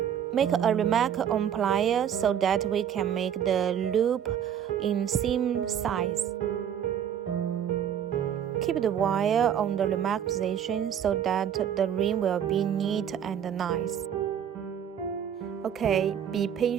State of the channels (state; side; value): quieter; left; 9.1 dB